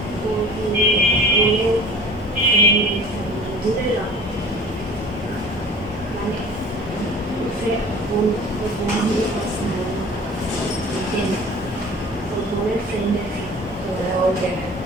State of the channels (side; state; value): both; normal; correlation 0.44